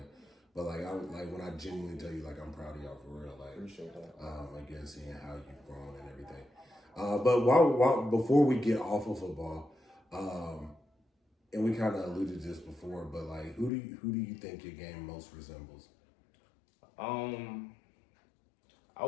But like when I genuinely tell you like I'm proud of y'all for real, like appreciate that. Again, seeing how you've grown and everything. But while before we get off of football, and we kind of alluded to this before, but like who do you think your game most resembles? I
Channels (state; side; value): drops out; right; at 13.7 s